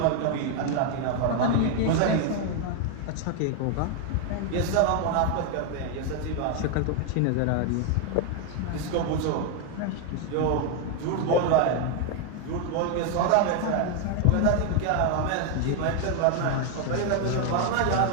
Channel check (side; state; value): both; different; correlation 0.01